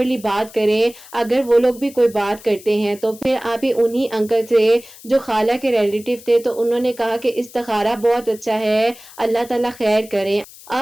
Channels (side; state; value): left; noise; hiss, 20 dB below the sound